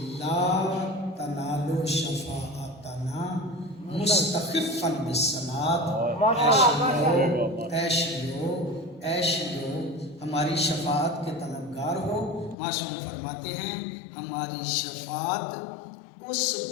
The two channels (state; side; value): drops out; right; at 12.6 s